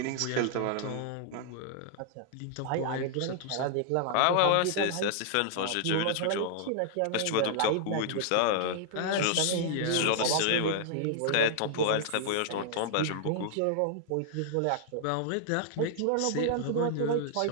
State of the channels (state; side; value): different; both; correlation -0.01